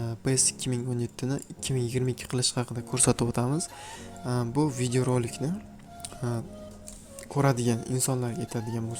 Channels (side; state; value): both; identical; correlation 1.00